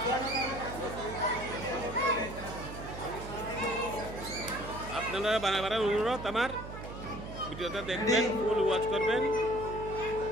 আপনারা বারবার অনুরোধ, আমার ভিডিওটা দেখবেন, ফুল ওয়াচ করবেন,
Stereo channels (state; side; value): noise; right; hum, 10 dB below the sound